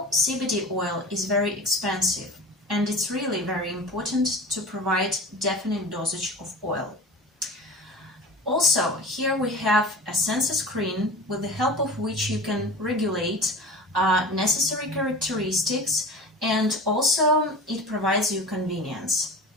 CBD oil is very expensive, and it's really very important to provide definite dosage of oil. Also, here we have a sensor screen with the help of which you can regulate necessary characteristics, and also it provides you convenience.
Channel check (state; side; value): normal; both; correlation 0.35